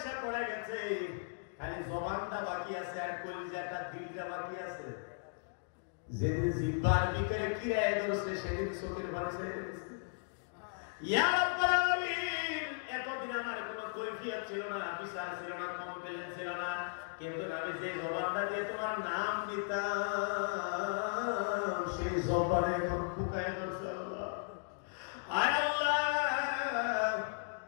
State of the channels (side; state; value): right; silent; digital silence